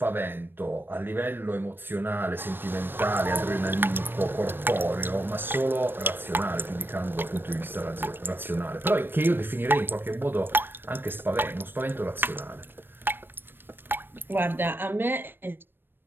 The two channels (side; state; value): left; late; 0.097 ms